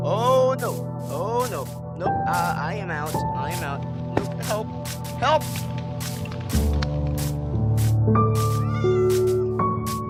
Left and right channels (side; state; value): both; identical; correlation 1.00